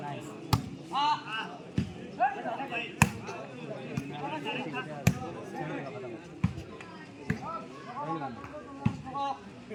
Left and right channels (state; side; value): identical; both; correlation 1.00